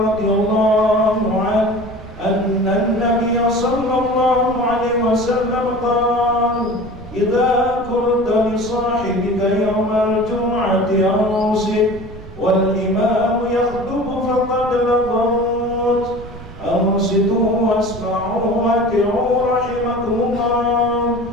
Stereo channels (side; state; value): right; noise; rumble, 15 dB below the sound